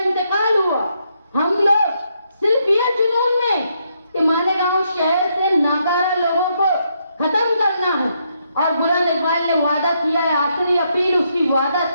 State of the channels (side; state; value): both; inverted; correlation -0.77